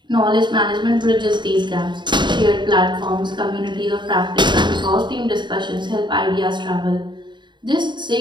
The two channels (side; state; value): left; late; 0.22 ms